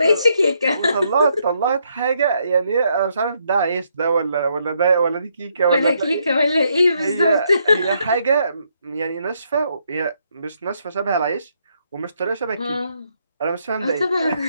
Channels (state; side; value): inverted; both; correlation -0.75